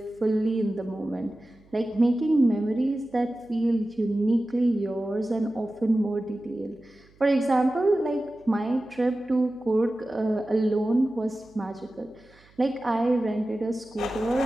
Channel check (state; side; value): noise; right; hum, 29 dB below the sound